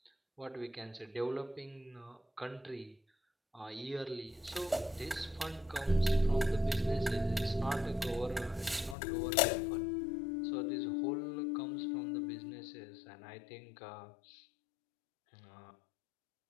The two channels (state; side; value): drops out; right; at 9.0 s